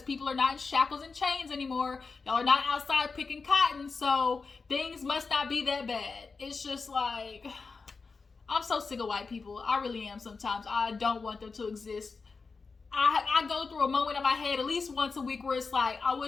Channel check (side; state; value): right; quieter; 4.6 dB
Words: people are not in shackles and chains anymore. Y'all are not outside picking cotton, so things must not be that bad. It's just like, I'm so sick of white people. I really am sometimes. I don't want them to exist. I go through a moment in my head at least once a week where it's like, I